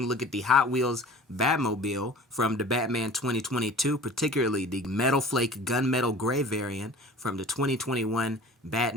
a look at the Hot Wheels Batmobile from the Batman 2022, particularly the Metalflake Gunmetal Gray Variant from the 2021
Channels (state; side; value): normal; both; correlation 0.43